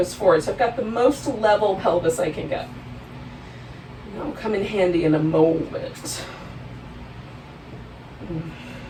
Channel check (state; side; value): identical; both; correlation 1.00